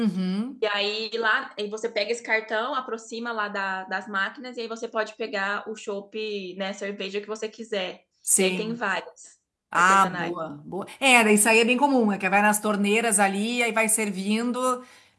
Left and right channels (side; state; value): both; identical; correlation 1.00